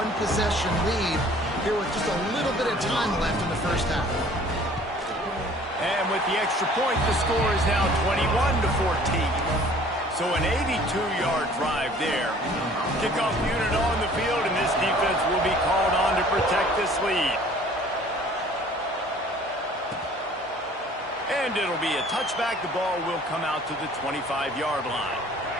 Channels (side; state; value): both; normal; correlation 0.52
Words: lead here with just a little bit of time left in the 1st half. And with the extra point, the score is now 21-14. So an 82-yard drive there. Kickoff unit on the field, and this defense will be called on to protect this lead. And it'll be a touchback. The ball will come out to the 25-yard line.